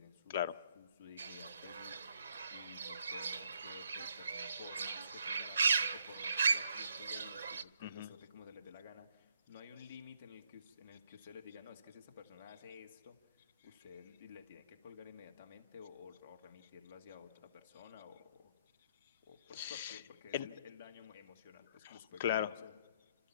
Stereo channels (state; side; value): inverted; both; correlation -0.72